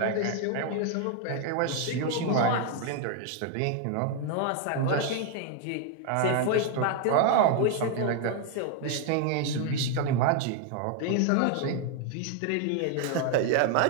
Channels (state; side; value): different; both; correlation 0.00